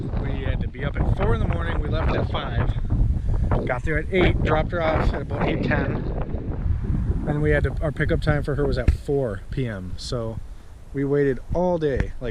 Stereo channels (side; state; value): both; identical; correlation 1.00